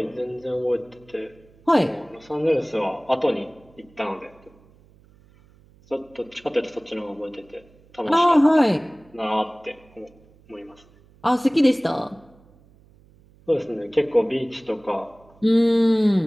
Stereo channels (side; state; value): right; noise; hum, 28 dB below the sound